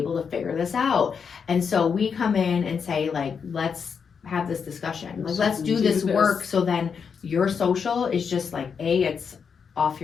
to figure this out. And so we come in and say, like, let's have this discussion. Like, let's do this work, so then your social is just like, it's off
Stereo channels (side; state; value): right; quieter; 6.3 dB